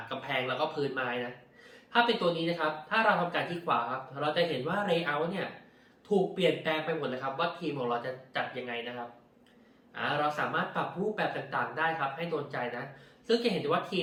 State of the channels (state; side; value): identical; both; correlation 1.00